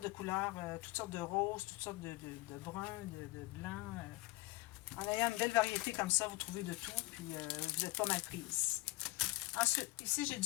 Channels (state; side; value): quieter; right; 22.2 dB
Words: de couleurs, toutes sortes de roses, toutes sortes de bruns, de blancs. En ayant une belle variété comme ça, vous trouvez de tout, puis vous n'êtes pas mal prise. Ensuite, ici, j'ai